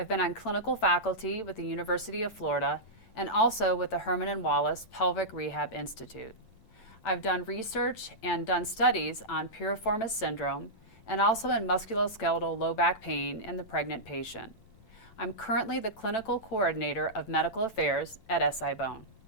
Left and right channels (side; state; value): right; late; 10 ms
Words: been on clinical faculty with the University of Florida and also with the Herman and Wallace Pelvic Rehab Institute. I've done research and done studies on piriformis syndrome and also in musculoskeletal low back pain in the pregnant patient. I'm currently the clinical coordinator of medical affairs at SI-BONE.